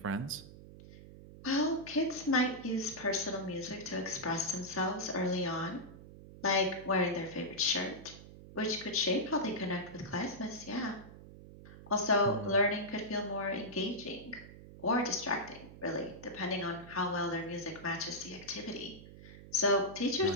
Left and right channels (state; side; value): noise; right; hum, 16 dB below the sound